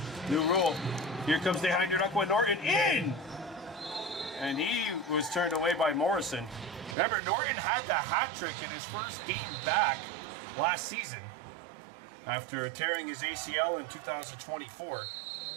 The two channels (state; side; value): drops out; left; at 7.0 s